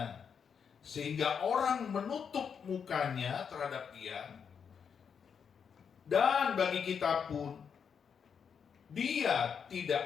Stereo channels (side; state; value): right; quieter; 6.9 dB